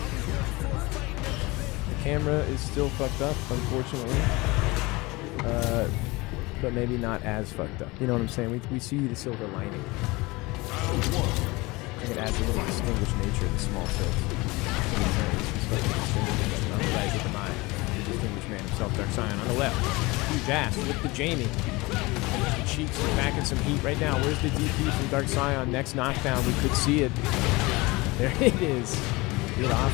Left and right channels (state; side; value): quieter; right; 23.1 dB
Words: The camera is still fucked up, unfortunately. but maybe not as fucked up. You know what I'm saying? We see the silver lining. I think it adds a little distinguished nature to the small tilt. He's fucking distinguished. On the right with the Mai. The distinguished man himself, Dark Scion. On the left, huge ass with the Jamie. The Cheeks are packing some heat right now. Where's the DP from Dark Scion? Next knockdown, we could see it. There it is. Get off